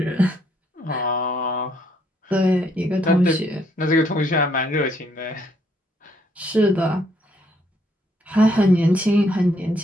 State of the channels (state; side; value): normal; both; correlation 0.70